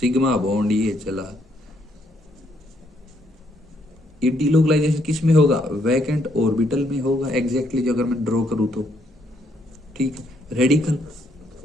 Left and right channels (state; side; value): normal; both; correlation 0.72